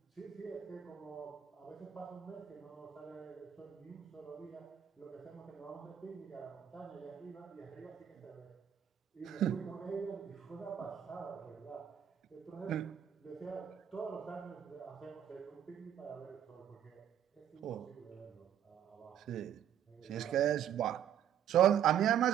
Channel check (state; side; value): quieter; left; 9.8 dB